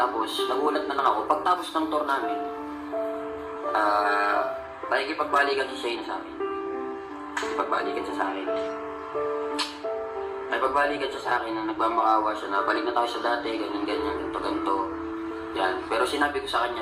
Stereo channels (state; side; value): identical; both; correlation 1.00